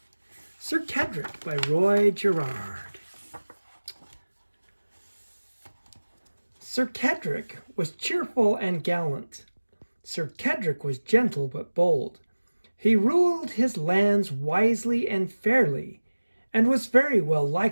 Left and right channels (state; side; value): inverted; both; correlation -1.00